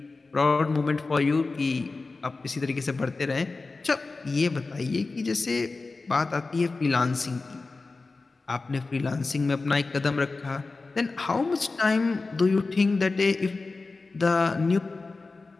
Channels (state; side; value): quieter; right; 3.7 dB